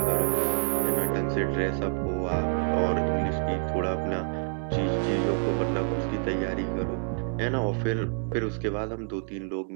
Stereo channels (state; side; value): quieter; left; 38.4 dB